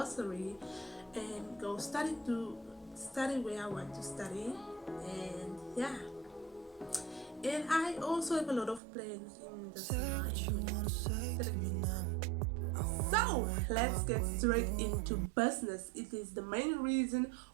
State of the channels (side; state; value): left; drops out; at 8.8 s